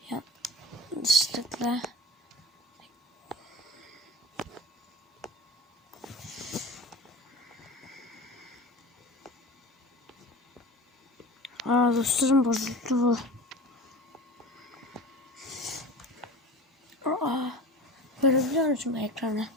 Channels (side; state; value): both; normal; correlation 0.36